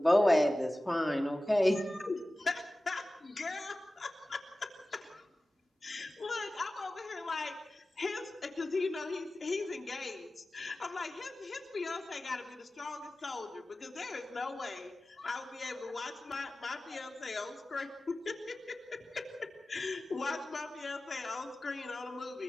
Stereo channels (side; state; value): both; normal; correlation 0.96